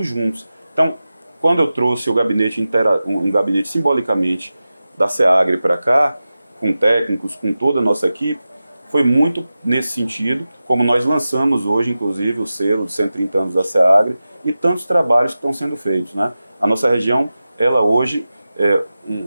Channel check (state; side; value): inverted; both; correlation -0.94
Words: juntos. Então, quando eu trouxe um gabinete simbolicamente da SEAGRE para cá, com técnicos, com toda a nossa equipe, foi muito nesse sentido, como nós lançamos hoje, inclusive, o selo de 130 anos da SEAGRE e tantos trabalhos que estão sendo feitos, né? A nossa região, ela hoje,